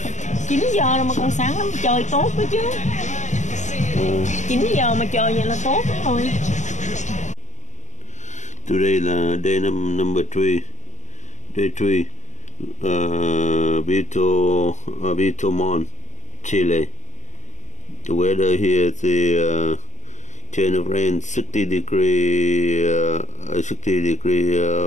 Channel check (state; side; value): late; right; 0.35 ms